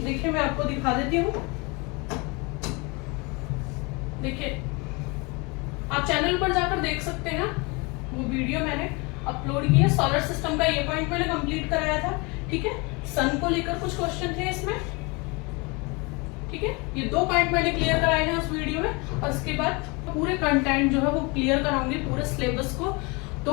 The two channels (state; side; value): quieter; right; 28.1 dB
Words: देखिए मैं आपको दिखा देती हूँ। देखिए आप चैनल पर जाकर देख सकते हैं, वो वीडियो मैंने अपलोड की है। सोलर सिस्टम का ये पॉइंट मैंने कंप्लीट कराया था। ठीक है, सन को लेकर कुछ क्वेश्चन थे इसमें। ठीक है, ये 2 पॉइंट मैंने क्लियर कराए हैं उस वीडियो में और उसके बाद पूरे कंटेंट जो है वो क्लियर कराऊंगी पूरे सिलेबस को। तो